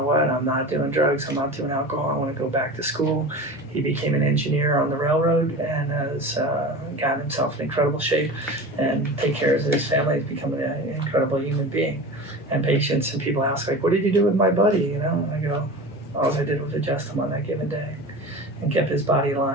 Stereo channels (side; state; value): both; normal; correlation 0.32